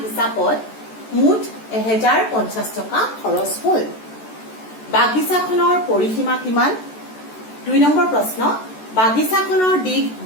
হিচাপত মুঠ 1050 টকা খৰচ হ'ল। বাগিচাখনৰ পৰিসীমা কিমান? 2 নম্বৰ প্ৰশ্ন, বাগিচাখনৰ দিশ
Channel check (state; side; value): late; right; 14 ms